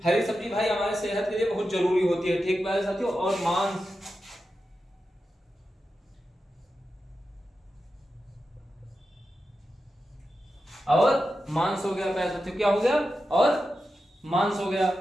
हरी सब्जी भाई हमारे सेहत के लिए बहुत जरूरी होती है, ठीक प्यारे साथियों। और मांस, और मांस हो गया प्यारे साथियों, क्या हो गया? और मांस हो गया,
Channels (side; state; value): both; normal; correlation 0.90